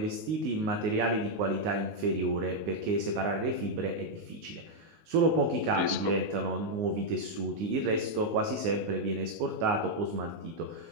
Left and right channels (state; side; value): late; left; 19 ms